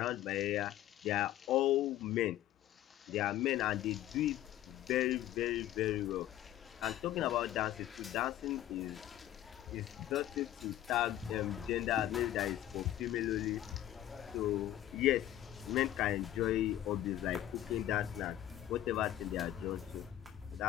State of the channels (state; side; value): quieter; right; 13.1 dB